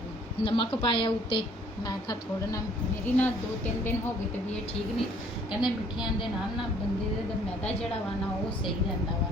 ਨਮਕ ਪਾਇਆ ਉੱਤੇ। ਮੈਂ ਕਿਹਾ ਥੋੜਾ ਨਾ ਮੇਰੀ ਨਾ 2-3 ਦਿਨ ਹੋ ਗਏ ਤੇ ਵੀ ਇਹ ਠੀਕ ਨਹੀਂ। ਕਹਿੰਦੇ ਮਿੱਠਿਆਂ ਦੇ ਨਾਲ ਨਾ ਬੰਦੇ ਦਾ ਮੈਦਾ ਜਿਹੜਾ ਵਾ ਨਾ ਉਹ ਸਹੀ ਰਹਿੰਦਾ ਵਾ।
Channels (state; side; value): normal; both; correlation 0.59